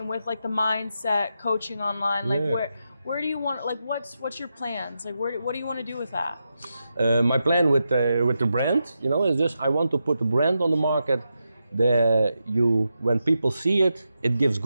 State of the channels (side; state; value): both; inverted; correlation -0.87